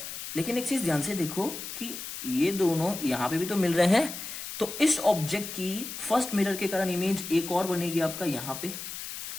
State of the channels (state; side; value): noise; left; hiss, 8 dB below the sound